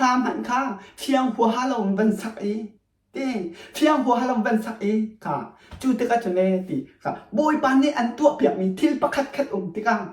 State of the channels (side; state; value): both; identical; correlation 1.00